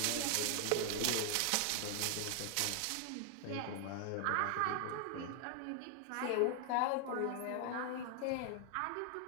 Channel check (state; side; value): different; both; correlation 0.00